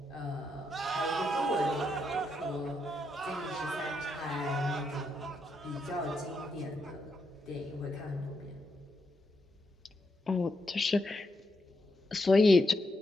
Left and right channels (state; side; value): normal; both; correlation 0.81